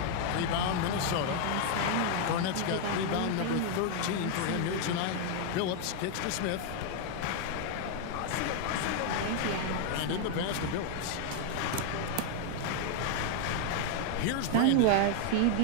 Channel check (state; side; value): different; both; correlation 0.00